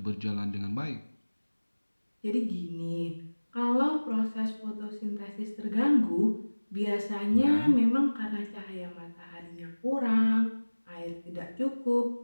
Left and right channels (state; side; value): inverted; both; correlation -1.00